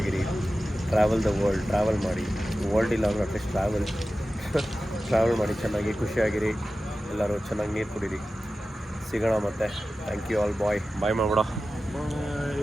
ಟ್ರಾವೆಲ್ ಮಾಡಿ. ವರ್ಲ್ಡ್ ಇಲ್ಲ ಅಂದರೆ ಅಟ್ಲೀಸ್ಟ್ ಟ್ರಾವೆಲ್ ಮಾಡಿ, ಚೆನ್ನಾಗಿ ಖುಷಿಯಾಗಿರಿ. ಎಲ್ಲರೂ ಚೆನ್ನಾಗಿ ನೀರು ಕುಡೀರಿ. ಸಿಗೋಣ ಮತ್ತೆ. Thank you all. ಬಾಯ್ ಮಾಡ್ಬಿಡ.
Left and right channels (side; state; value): both; normal; correlation 0.94